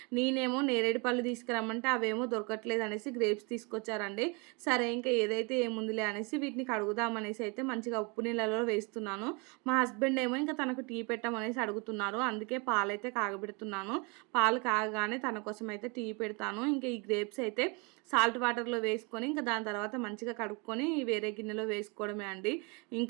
నేనేమో నేరేడు పళ్ళు తీసుకురమ్మంటే అవేమో దొరకట్లేదు అనేసి గ్రేప్స్ తీసుకొచ్చారండి. సరే ఇంకా ఏదైతే ఏముందిలే అనేసి వీటిని కడుగుదామనేసి అయితే మంచిగా ఉప్పు నీళ్ళలో వేస్తున్నాను. మా హస్బెండ్ ఏమో ఇంకా తనకు టీ పెట్టమనేసి అడుగుతున్నారు, అందుకే పాలైతే కాగబెడుతున్నాను. పాలు కాగగానే తన కోసం అయితే టీ పెడతాను. ఇంకా ఈ గ్రేప్స్ అయితే సాల్ట్ వాటర్లో వేసుకొని ఇంకా దాని తర్వాత మంచిగా కడుక్కొని వేరే గిన్నెలో వేసుకోవడమే అండి.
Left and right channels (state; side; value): quieter; left; 31.0 dB